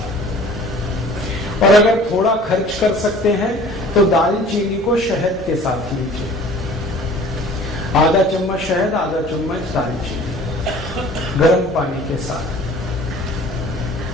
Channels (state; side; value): normal; both; correlation 0.48